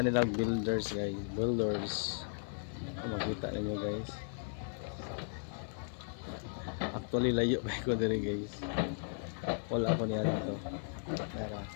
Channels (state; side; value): silent; right; 54 dB below the other